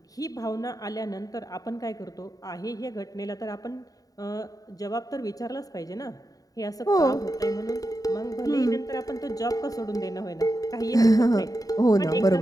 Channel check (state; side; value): late; right; 0.18 ms